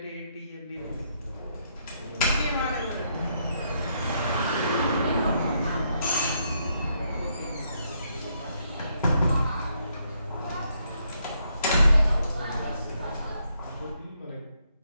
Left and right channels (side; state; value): both; inverted; correlation -0.75